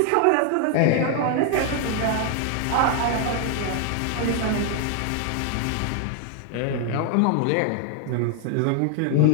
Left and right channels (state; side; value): different; both; correlation 0.00